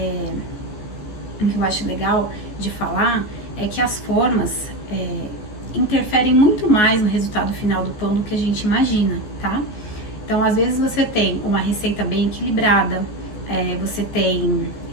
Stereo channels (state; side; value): late; right; 14 ms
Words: o que eu acho legal de falar é que as formas interferem muito mais no resultado final do pão do que a gente imagina, tá? Então, às vezes você tem uma receita bem equilibrada, você tem